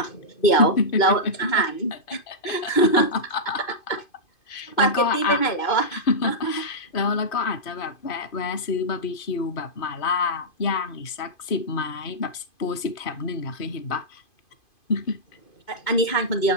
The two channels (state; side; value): late; right; 2.5 ms